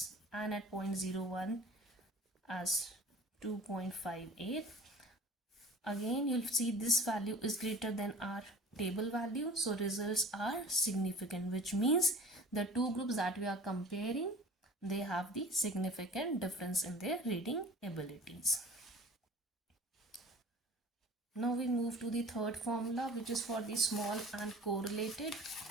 and at 0.01 as 2.58. Again, you'll see this value is greater than our table value, so results are significant, which means the two groups that we are comparing, they have the significant difference in their reading abilities. Now we move to the third formula, which is for the small and correlated.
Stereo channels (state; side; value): normal; both; correlation 0.43